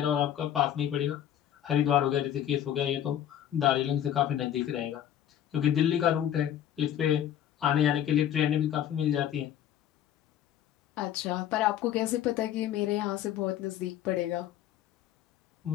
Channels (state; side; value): quieter; right; 10.7 dB